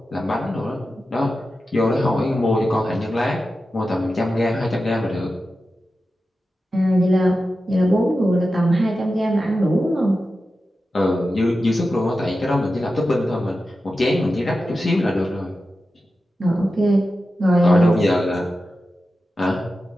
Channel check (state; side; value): normal; both; correlation 0.92